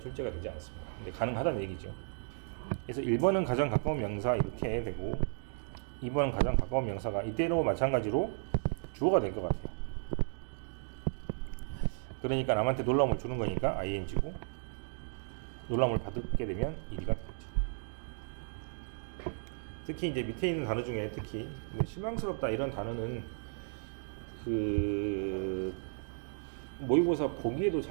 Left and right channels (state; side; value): silent; left; digital silence